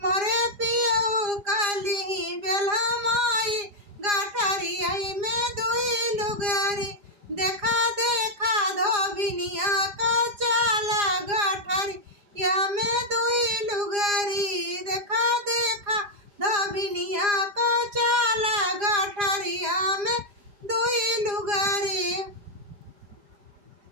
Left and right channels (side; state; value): left; late; 4.9 ms